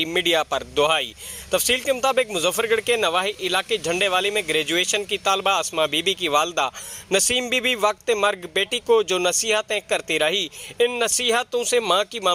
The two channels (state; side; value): identical; both; correlation 1.00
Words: मीडिया पर दुहाई। तफसील के मुताबिक मुजफ्फरगढ़ के नवाही इलाके झंडेवाली में ग्रेजुएशन की तालबा अस्मा बीबी की वालदा नसीम बीबी वक्त मर्ग बेटी को जो नसीहतें करती रही, इन नसीहतों से माँ की